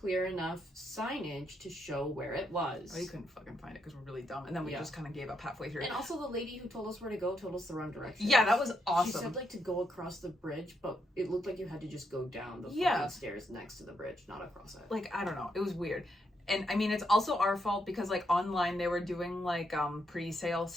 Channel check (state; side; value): normal; both; correlation 0.79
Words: enough signage to show where it was. Oh, you couldn't fucking find it because we're really dumb, and then we just kind of gave up halfway through. And also, the lady who told us where to go told us the wrong direction. Yeah, that was awesome. She said like to go across the bridge, but it looked like you had to just go down the fucking stairs next to the bridge, not across it. Like, I don't know, it was weird. And I mean, it's also our fault because like online they were doing like pre-sale